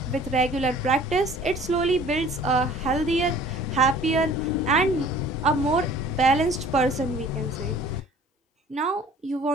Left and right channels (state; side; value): normal; both; correlation 0.50